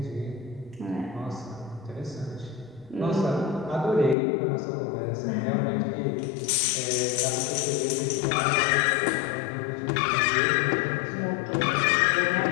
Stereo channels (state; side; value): drops out; right; at 4.2 s